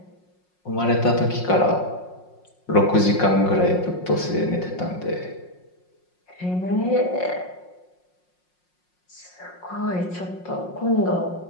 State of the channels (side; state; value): right; late; 5.5 ms